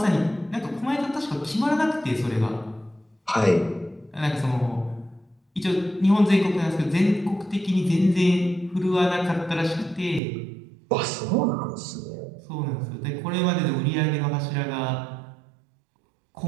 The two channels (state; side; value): drops out; left; at 10.2 s